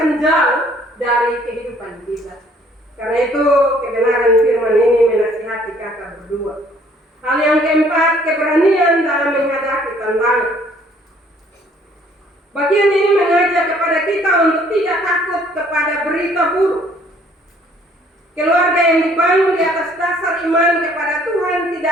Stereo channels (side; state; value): both; normal; correlation 0.60